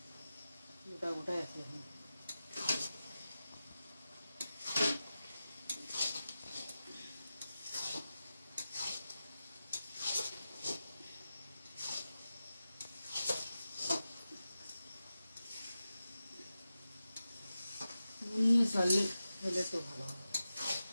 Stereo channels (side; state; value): both; inverted; correlation -0.92